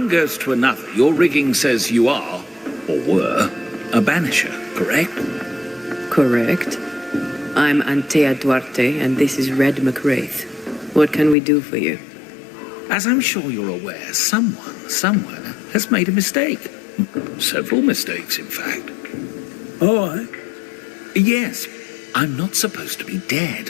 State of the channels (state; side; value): drops out; right; at 11.4 s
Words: goes to another. Your rigging says you are, or were, a banisher, correct? Correct. I'm Antea Duarte, and this is Red McCraith. What can we do for you? As I'm sure you're aware, someone, somewhere, has made a mistake. Several mistakes, in fact. Oh, aye. Yes, I'm not supposed to be